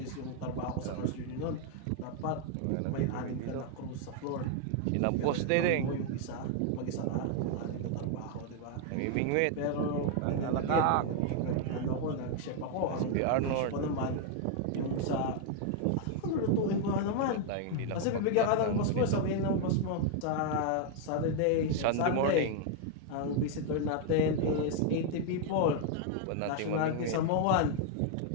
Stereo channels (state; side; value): different; both; correlation 0.00